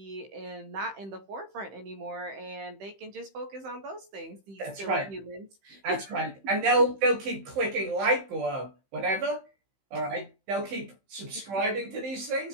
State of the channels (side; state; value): left; late; 15 ms